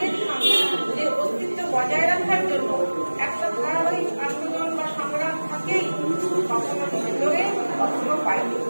সঙ্গে যে অস্তিত্ব বজায় রাখার জন্য একটা ধারাবাহিক আন্দোলন বা সংগ্রাম থাকেই। কখনো ভিতরে কখনো বাইরে,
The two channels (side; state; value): both; inverted; correlation -1.00